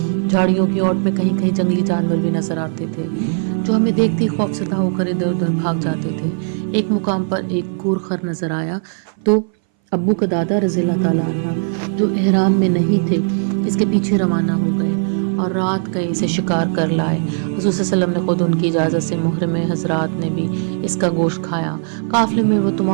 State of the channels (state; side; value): silent; left; 61 dB below the other